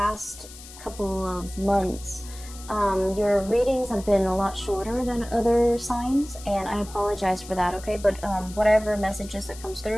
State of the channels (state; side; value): noise; left; hiss, 17 dB below the sound